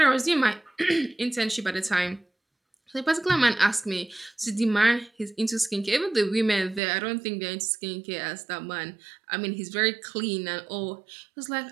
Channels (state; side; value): drops out; left; at 6.8 s